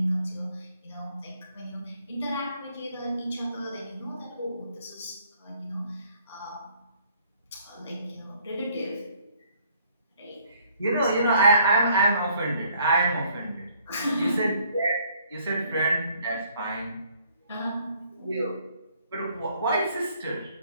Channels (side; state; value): both; inverted; correlation -0.64